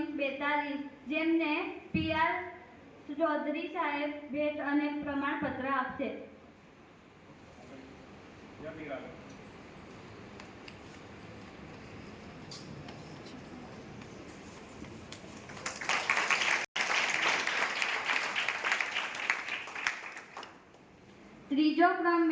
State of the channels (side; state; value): both; identical; correlation 1.00